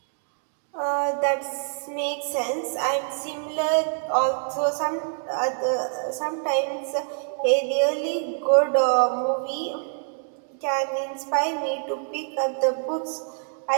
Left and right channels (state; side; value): silent; left; digital silence